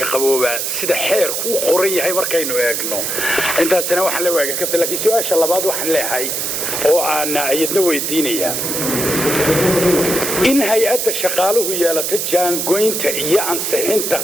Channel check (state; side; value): noise; right; hiss, 1 dB below the sound